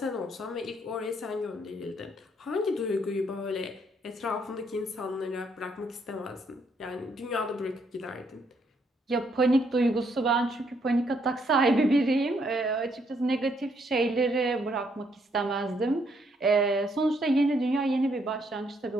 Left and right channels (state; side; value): normal; both; correlation 0.72